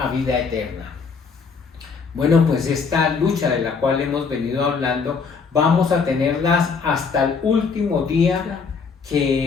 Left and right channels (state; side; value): quieter; right; 5.3 dB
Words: vida eterna. Bueno, pues esta lucha de la cual hemos venido hablando, vamos a tenerlas hasta el último día